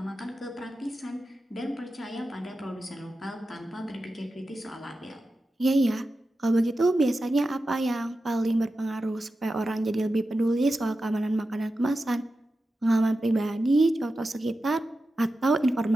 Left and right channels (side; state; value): both; normal; correlation 0.92